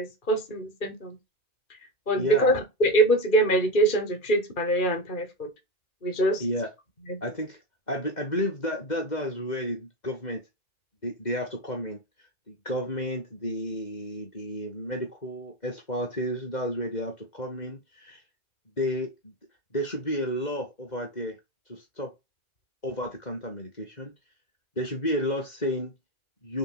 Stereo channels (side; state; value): right; late; 2.3 ms